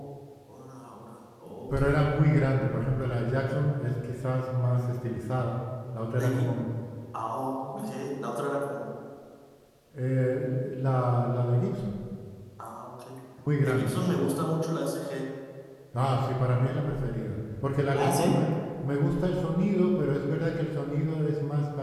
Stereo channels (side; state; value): both; identical; correlation 1.00